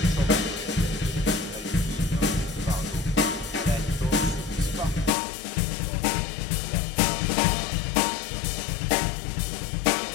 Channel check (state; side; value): drops out; right; at 5.1 s